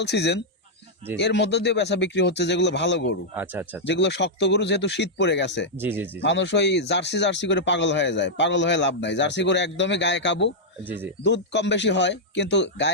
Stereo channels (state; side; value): normal; both; correlation -0.06